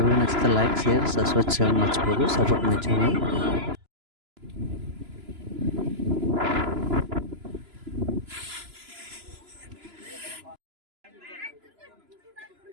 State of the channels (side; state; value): left; late; 3.0 ms